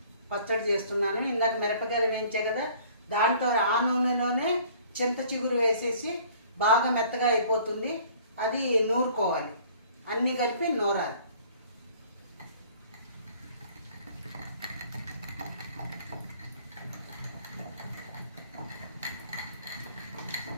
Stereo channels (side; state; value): both; inverted; correlation -0.54